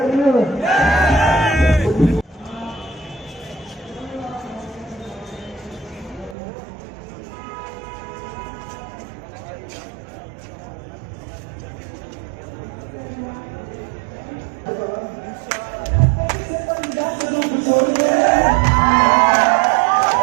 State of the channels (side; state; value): left; drops out; at 6.4 s